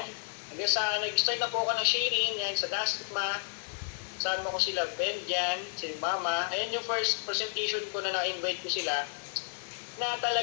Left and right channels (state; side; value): silent; right; digital silence